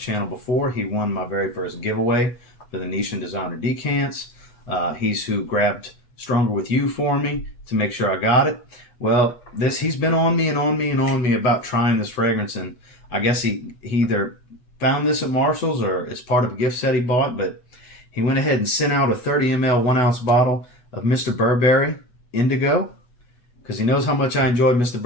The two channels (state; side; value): late; right; 8.2 ms